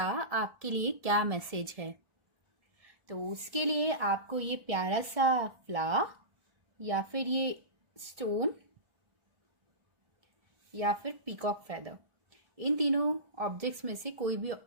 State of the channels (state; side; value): late; left; 1.4 ms